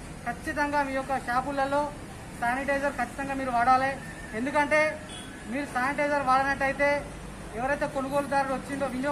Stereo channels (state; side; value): identical; both; correlation 1.00